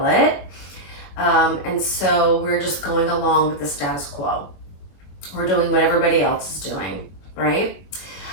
it. And so we're just going along with the status quo. We're doing what everybody else is doing, right?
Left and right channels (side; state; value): right; late; 21 ms